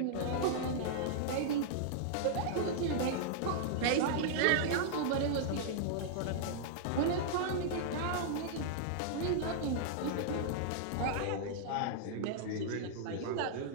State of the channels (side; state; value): both; different; correlation -0.01